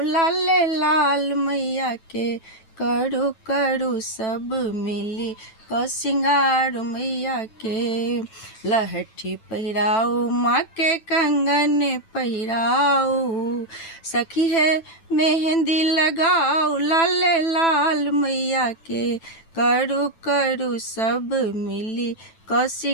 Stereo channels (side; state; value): right; late; 9.1 ms